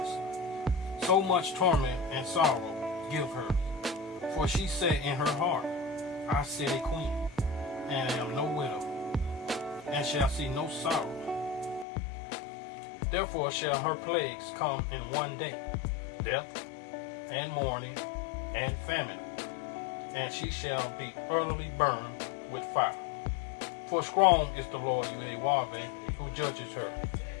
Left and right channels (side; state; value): right; drops out; at 11.9 s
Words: So much torment and sorrow give her. For she said in her heart, I sit a queen, and am no widow, and shall see no sorrow. Therefore shall her plagues come in one day, death, and mourning, and famine, and she shall be utterly burned with fire. For strong is the Lord Yahweh, who judges her.